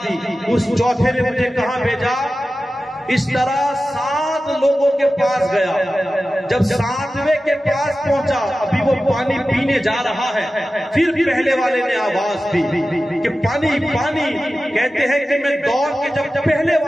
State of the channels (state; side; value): normal; both; correlation 0.94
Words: دی، اس چوتھے نے مجھے کہاں بھیجا؟ اس طرح 7 لوگوں کے پاس گیا۔ جب 7ویں کے پاس پہنچا، ابھی وہ پانی پینے جا رہا ہے، پھر پہلے والے نے آواز دی کہ پانی پانی۔ کہتے ہیں کہ میں دوڑ کے جب پہلے